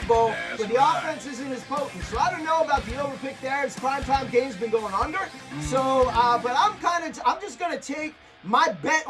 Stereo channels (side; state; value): both; identical; correlation 1.00